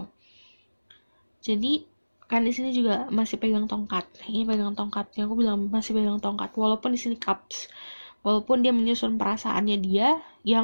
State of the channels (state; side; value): inverted; both; correlation -1.00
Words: Jadi kan di sini juga masih pegang tongkat. Ini pegang tongkat. Yang aku bilang masih pegang tongkat. Walaupun di sini cups. Walaupun dia menyusun perasaannya dia,